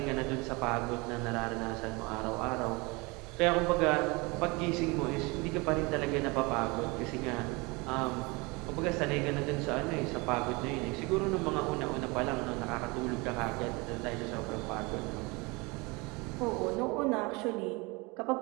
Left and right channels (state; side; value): quieter; left; 26.4 dB